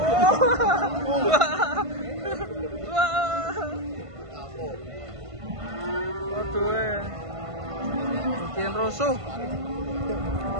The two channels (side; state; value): left; late; 1.5 ms